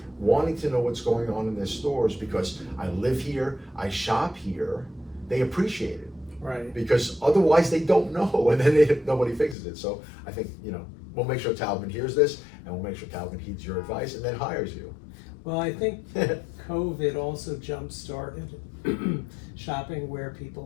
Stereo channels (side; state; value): right; drops out; at 9.6 s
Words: wanting to know what's going on in their stores, because I live here, I shop here, they appreciate it. Right. Because otherwise they don't know, and then nobody fixes it. So I think, you know, we'll make sure Taubman hears this, and we'll make sure Taubman heeds your advice and then hires you. Well, I think COVID also jump-started shopping where